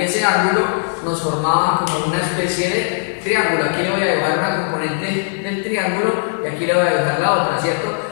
ese ángulo nos formaba como una especie de triángulo. Aquí le voy a dibujar una componente del triángulo y aquí le voy a dibujar la otra, ¿cierto?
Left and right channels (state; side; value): silent; right; digital silence